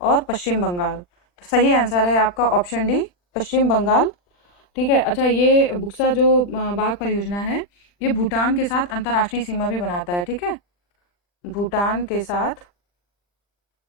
पश्चिम बंगाल। तो सही आंसर है आपका ऑप्शन डी पश्चिम बंगाल। ठीक है, अच्छा ये बुक्सा जो बाग परियोजना है, ये भूटान के साथ अंतर्राष्ट्रीय सीमा भी बनाता है। ठीक है, भूटान के साथ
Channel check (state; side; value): late; right; 40 ms